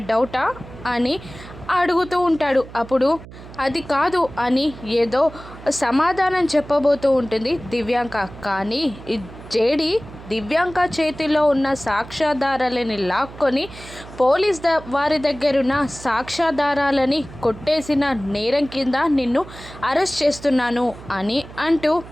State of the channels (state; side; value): noise; right; hum, 16 dB below the sound